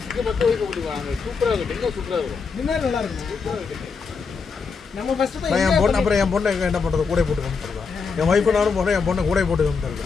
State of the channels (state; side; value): quieter; right; 5.2 dB